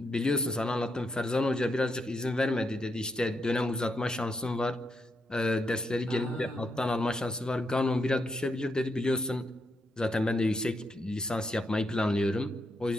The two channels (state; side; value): normal; both; correlation 0.81